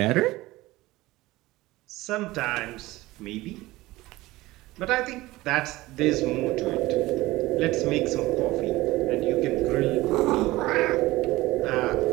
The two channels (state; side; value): quieter; left; 18.8 dB